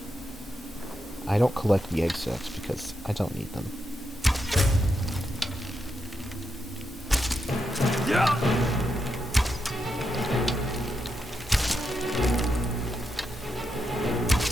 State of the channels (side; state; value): both; normal; correlation 0.84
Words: I don't collect the egg sacs because I don't need them. Yeah.